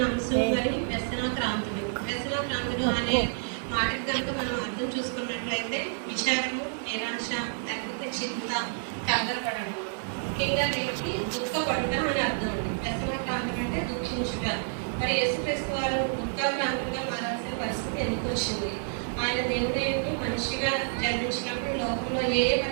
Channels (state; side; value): silent; left; 59 dB below the other